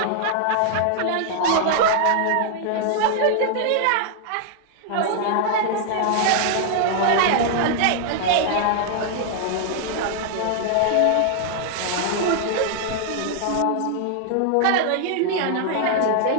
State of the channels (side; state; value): both; different; correlation 0.00